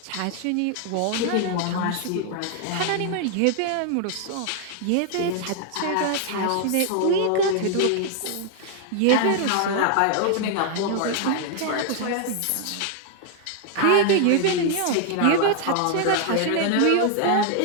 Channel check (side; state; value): both; different; correlation 0.00